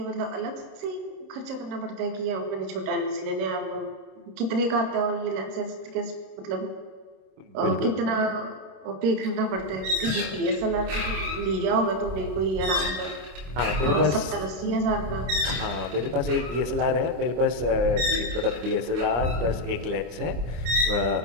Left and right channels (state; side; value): late; left; 26 ms